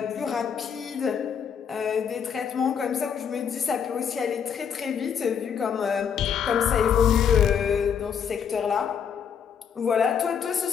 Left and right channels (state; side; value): quieter; right; 7.5 dB